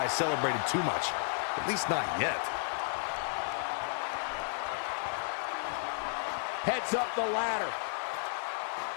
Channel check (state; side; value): silent; right; digital silence